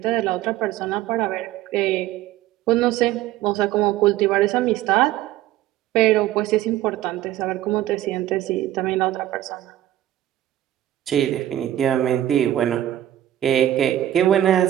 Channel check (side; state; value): left; quieter; 13.1 dB